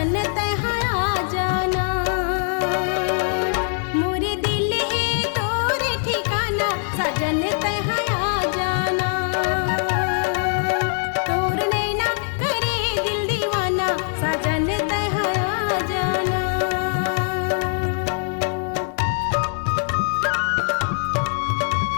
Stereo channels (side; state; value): right; silent; 64 dB below the other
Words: तह जाना। मोरे दिल है तोर ठिकाना सजन तह जाना। तोर नैना करे दिल दीवाना सजन तह जाना।